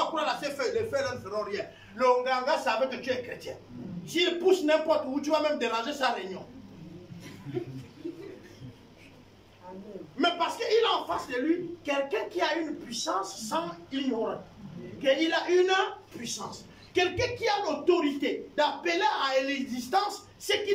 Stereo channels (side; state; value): both; identical; correlation 1.00